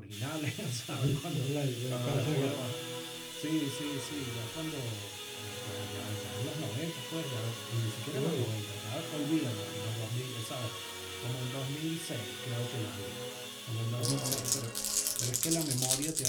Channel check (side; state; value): both; identical; correlation 1.00